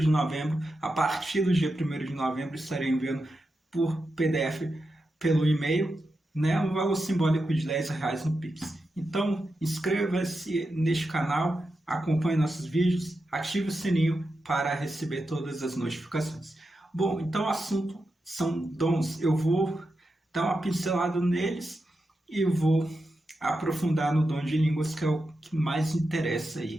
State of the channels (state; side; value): normal; both; correlation 0.89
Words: novembro, a partir do dia 1º de novembro, estarei enviando por PDF pelo e-mail, né, um valor simbólico de R$10 no Pix. Então, inscreva-se neste canal, acompanhe nossos vídeos, ative o sininho para receber todas as notificações. Bom, então o assunto são dons. Eu vou dar uma pincelada neles e vou aprofundar no dom de línguas, que é o que mais interessa